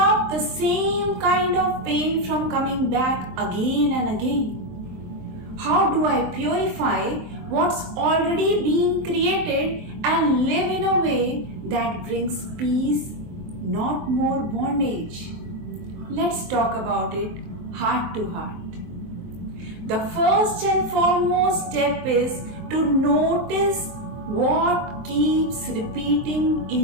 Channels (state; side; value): late; left; 23 ms